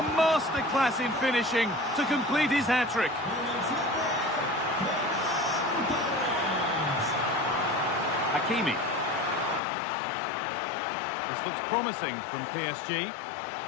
masterclass in finishing to complete his hat-trick. Hakimi. This looks promising from PSG.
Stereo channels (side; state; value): right; drops out; at 9.6 s